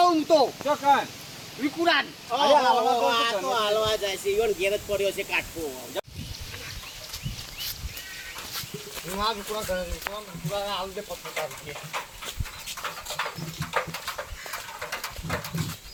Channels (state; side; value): identical; both; correlation 1.00